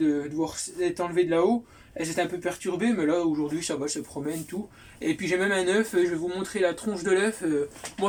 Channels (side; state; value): both; identical; correlation 1.00